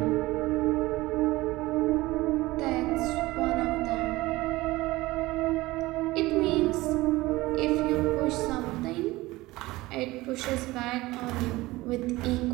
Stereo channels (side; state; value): left; quieter; 19.4 dB